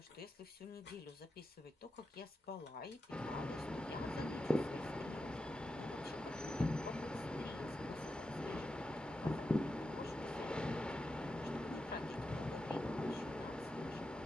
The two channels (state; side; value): normal; both; correlation 0.89